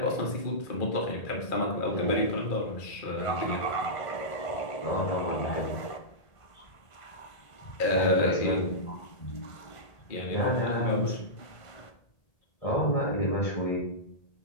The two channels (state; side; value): late; right; 1.8 ms